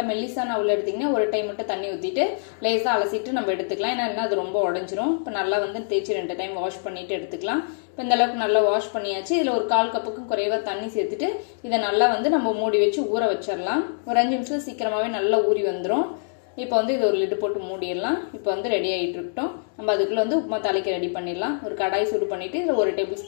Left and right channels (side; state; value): right; silent; digital silence